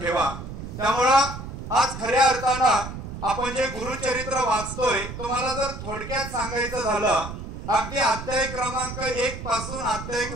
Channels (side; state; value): right; noise; rumble, 9 dB below the sound